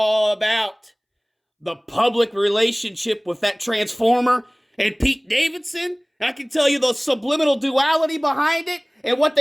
about the public relationship with that transformer and Pete Davidson. I can tell you the subliminal duality behind it and what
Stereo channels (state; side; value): identical; both; correlation 1.00